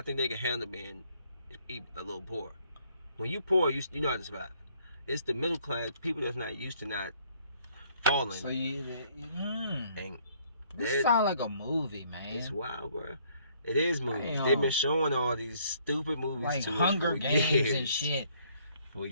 think they can handle being a little poor. When you poor, you know how to survive. It's the middle class people that's not used to not falling. So and this sound like a movie, man. It's wild, bro. It is movies. Damn. They've been showing all these stupid movies like to Hunger Games and shit. For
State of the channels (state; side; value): inverted; both; correlation -0.64